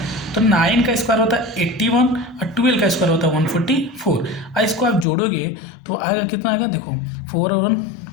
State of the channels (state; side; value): drops out; right; at 5.1 s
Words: तो 9 का स्क्वायर होता है 81 और 12 का स्क्वायर होता है 144। और इसको आप जोड़ोगे तो आएगा कितना आएगा? देखो 4 और 1